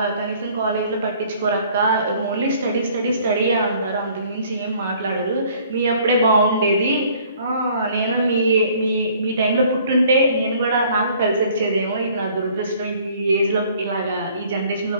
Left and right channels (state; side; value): inverted; both; correlation -0.57